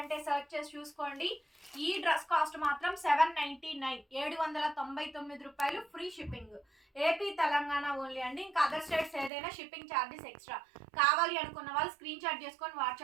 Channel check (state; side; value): drops out; left; at 9.3 s